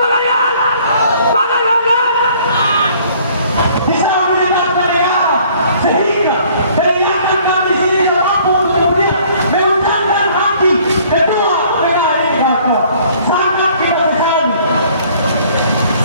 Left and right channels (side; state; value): both; inverted; correlation -0.57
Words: kalian? Semangat kawan-kawan. Bisa mendengar mereka sehingga kehilangan kami sini mampu untuk kemudian mengundangkan hati kedua mereka sangat kita sayang.